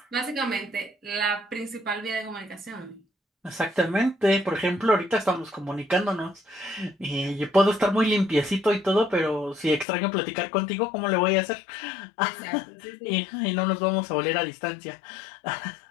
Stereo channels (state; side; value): drops out; right; at 9.9 s